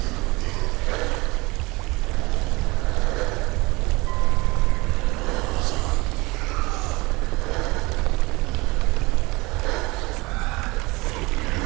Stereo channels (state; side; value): quieter; left; 23.5 dB